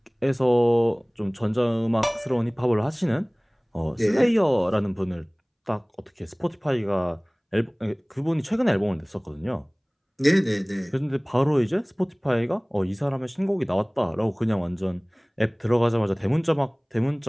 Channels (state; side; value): identical; both; correlation 1.00